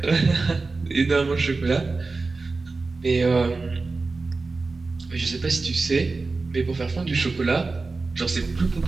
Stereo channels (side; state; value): left; quieter; 3.8 dB